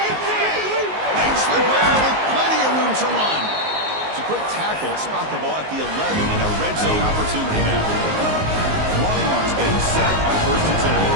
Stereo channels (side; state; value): left; late; 19 ms